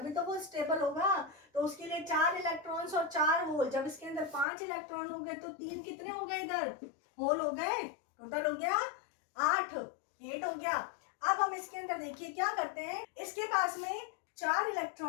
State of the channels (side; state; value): right; drops out; at 4.5 s